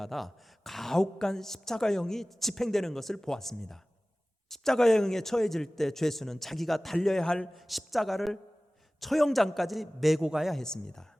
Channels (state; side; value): normal; both; correlation 0.98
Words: 가혹한 십자가형이 집행되는 것을 보았습니다. 십자가형에 처해질 때 죄수는 자기가 달려야 할 십자가를 처형장까지 메고 가야 했습니다.